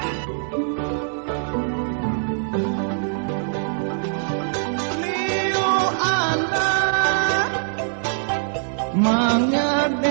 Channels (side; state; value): left; silent; 64 dB below the other